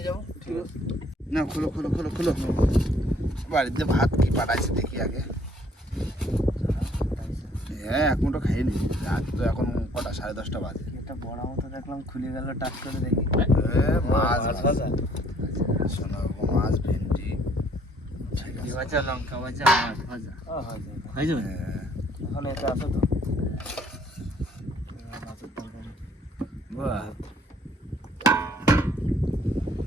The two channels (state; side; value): normal; both; correlation 0.62